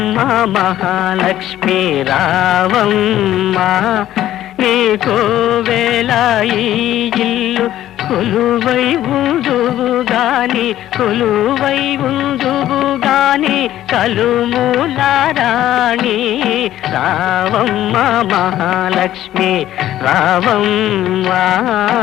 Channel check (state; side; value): quieter; right; 13.0 dB